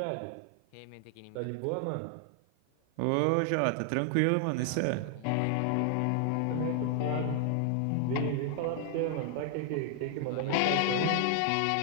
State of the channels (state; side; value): different; both; correlation 0.00